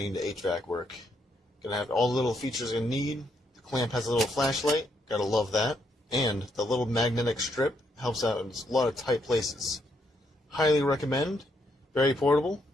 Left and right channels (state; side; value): normal; both; correlation 0.75